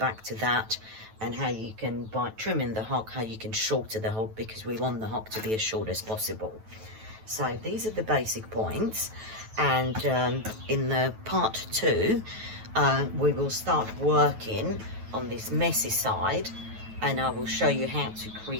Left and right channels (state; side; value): late; left; 9.2 ms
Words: to that, and how you can, by trimming the hock, how you can shorten the hock, because we want the hock to be as short as possible. So these are the basic points, and in the part 2 we will start working on this messy side, and I will show you how to